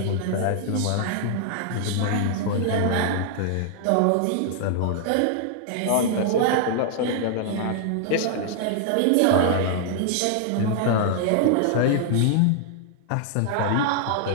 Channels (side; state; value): both; different; correlation -0.01